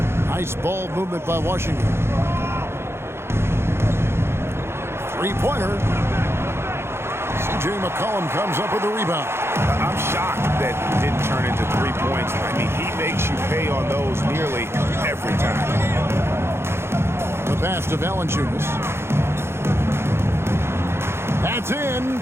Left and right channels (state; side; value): late; left; 0.12 ms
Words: Nice ball movement by Washington. Three-pointer. C.J. McCollum comes up with the rebound. I'm shocked that didn't turn into 3 points. I mean, he makes you pay on those nearly every time. The pass to Valanciunas. That's in.